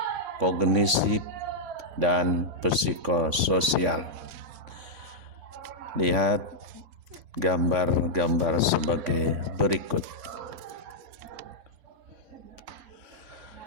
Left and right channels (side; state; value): left; late; 3.6 ms